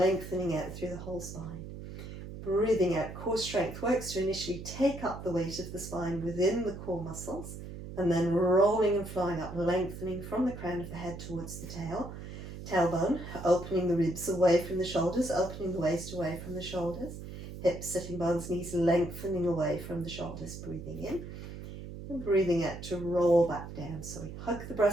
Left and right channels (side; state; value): right; noise; hum, 10 dB below the sound